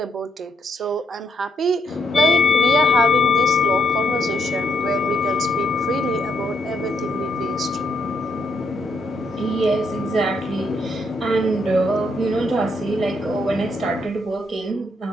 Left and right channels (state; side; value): normal; both; correlation 0.75